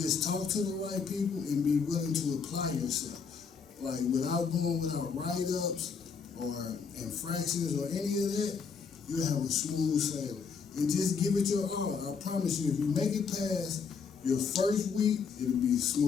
talk to the right people and be willing to apply yourself. Like without write-ups or infractions or any of that, you'll have a smooth sailing. And just give it your all. I promise you, if you make it past your first week, it'll be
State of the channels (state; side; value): quieter; right; 5.8 dB